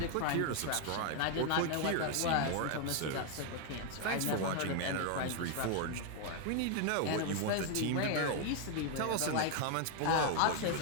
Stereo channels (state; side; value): different; both; correlation 0.01